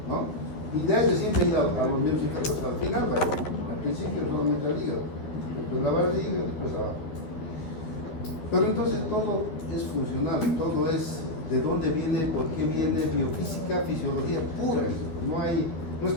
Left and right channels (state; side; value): late; right; 12 ms